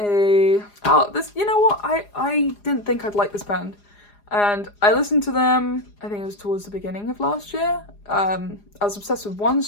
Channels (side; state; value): right; late; 4.9 ms